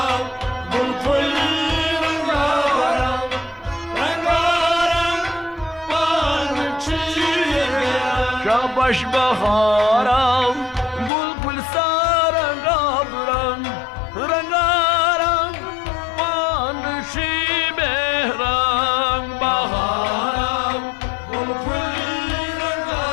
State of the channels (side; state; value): right; drops out; at 11.1 s